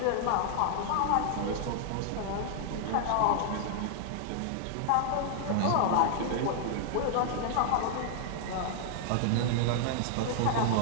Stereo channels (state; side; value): different; both; correlation -0.01